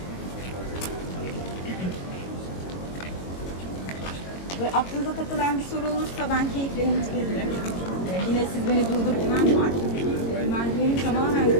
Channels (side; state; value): right; late; 22 ms